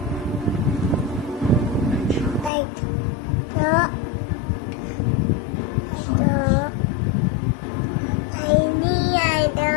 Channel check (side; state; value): right; drops out; at 2.5 s